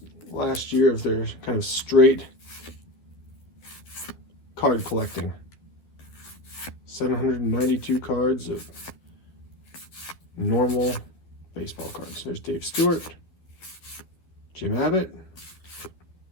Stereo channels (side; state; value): right; late; 12 ms